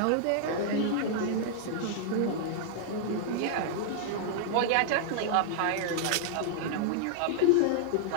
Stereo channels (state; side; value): different; both; correlation -0.01